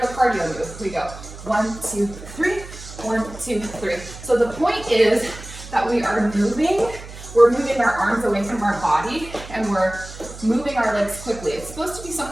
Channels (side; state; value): right; noise; hum, 14 dB below the sound